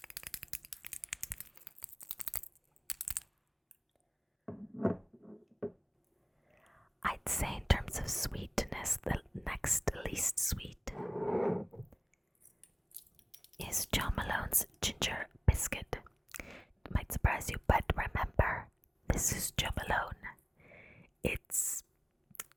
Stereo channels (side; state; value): both; identical; correlation 1.00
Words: I'd say in terms of sweetness, the next least sweet is John Malone's Ginger Biscuit. It might surprise you, but remember, this is John Malone. It's